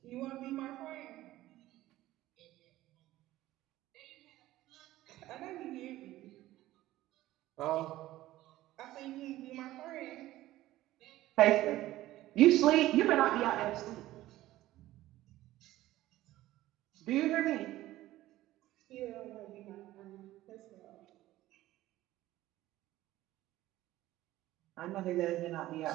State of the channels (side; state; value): left; quieter; 15.7 dB